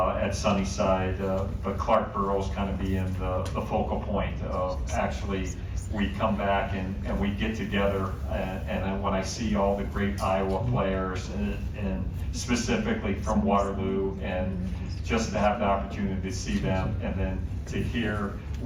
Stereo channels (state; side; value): identical; both; correlation 1.00